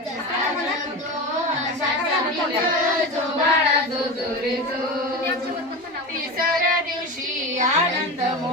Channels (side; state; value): both; normal; correlation 0.24